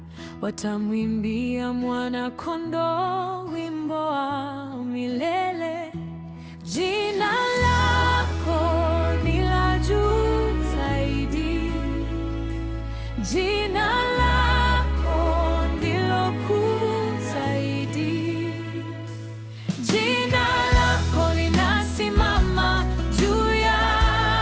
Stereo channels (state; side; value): identical; both; correlation 1.00